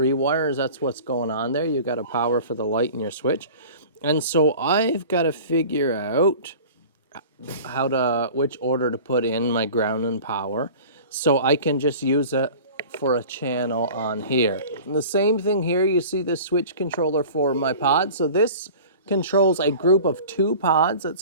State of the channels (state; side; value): inverted; both; correlation -0.41